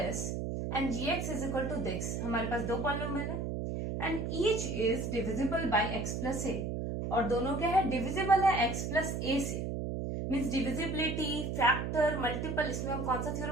and gx is equal to this, हमारे पास दो पॉलिनोमियल है and each is divisible by x plus a, और दोनों क्या है, डिविजिबल है x प्लस a से. मीन्स डिविजिबिलिटी, फैक्टर, मल्टीपल, इसमें हम कौन सा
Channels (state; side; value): noise; right; hum, 2 dB below the sound